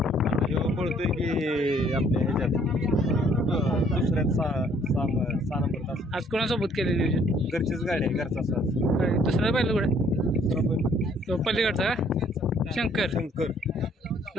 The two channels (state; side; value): normal; both; correlation 0.62